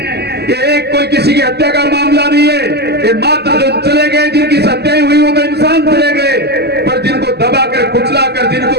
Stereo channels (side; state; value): left; late; 0.48 ms